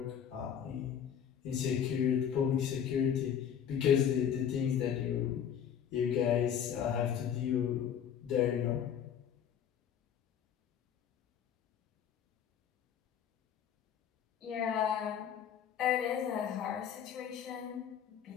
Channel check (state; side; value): quieter; right; 8.7 dB